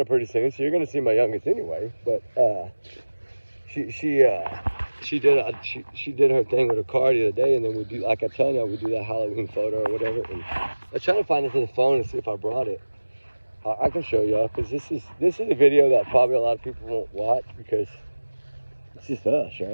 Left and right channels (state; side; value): inverted; both; correlation -1.00